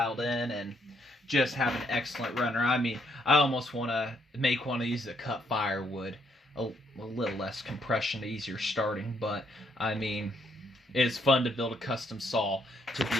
in, and just have an excellent runner. I mean, I almost want to make one of these that cut firewood. A little less compression, easier starting, but I mean, it's fun to build a custom saw to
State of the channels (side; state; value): both; normal; correlation 0.71